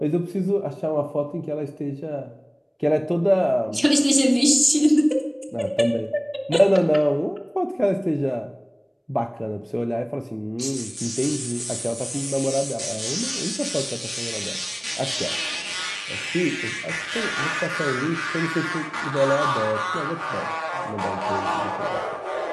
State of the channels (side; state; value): both; identical; correlation 1.00